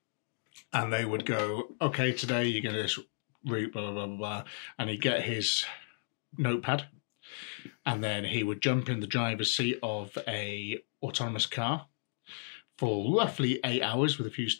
and they would go, okay, today you're going to this route, blah, blah, blah, blah, blah. And he'd get his notepad, and then he would jump in the driver's seat of a autonomous car for roughly 8 hours with a few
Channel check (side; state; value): right; silent; digital silence